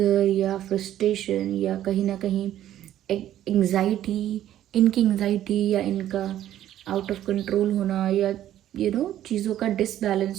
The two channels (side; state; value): left; quieter; 12.1 dB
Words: या फ्रस्ट्रेशन या कहीं ना कहीं एंग्जाइटी, इनकी एंग्जाइटी या इनका आउट ऑफ कंट्रोल होना, या चीज़ों का